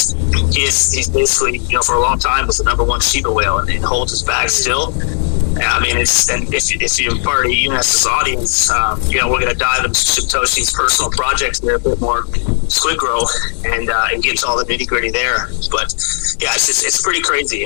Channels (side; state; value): right; silent; 70 dB below the other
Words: he's basically, you know, for a long time was the number one Shiba whale and holds his bag still. I mean, if you're part of Eunice's audience, you know, we're going to dive into Satoshi's personal projects there a bit more, SQUIDGROW, and get to all the nitty gritty there. But yeah, it's pretty crazy. You